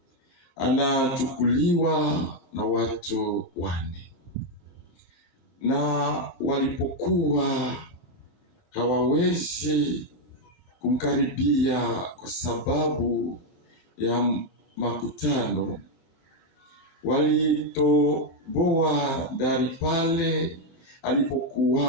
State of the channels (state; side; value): late; right; 22 ms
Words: anachukuliwa na watu 4. Na walipokuwa hawawezi kumkaribia kwa sababu ya makutano, walitoboa dari pale